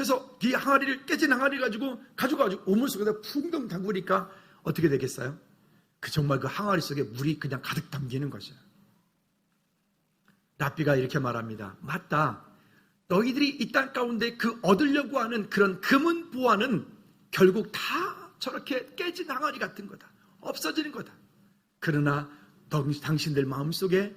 이 항아리를, 깨진 항아리 가지고 우물 속에다 풍덩 담그니까 어떻게 되겠어요? 정말 그 항아리 속에 물이 그냥 가득 담기는 거죠. 랍비가 이렇게 말합니다. 맞다. 너희들이 이 땅 가운데 그 얻으려고 하는 그런 금은 보화는 결국 다 저렇게 깨진 항아리 같은 거다. 없어지는 거다. 그러나 당신들 마음속에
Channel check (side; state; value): both; identical; correlation 1.00